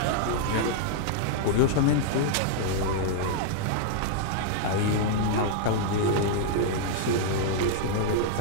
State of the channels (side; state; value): both; different; correlation -0.01